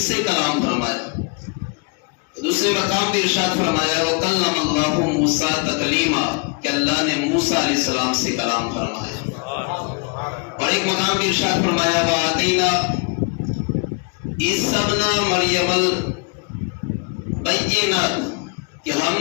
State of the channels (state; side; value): quieter; right; 33.1 dB